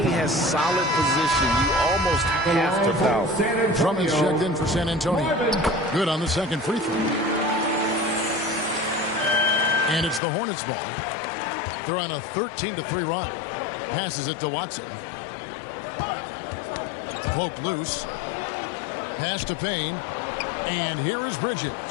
has solid position, you almost have to foul. Drummond's checked in for San Antonio. Good on the second free throw. And it's the Hornets ball. They're on a 13-3 run. Passes it to Watson. Poke loose. Pass to Payne. And here is Bridges.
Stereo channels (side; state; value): right; drops out; at 10.2 s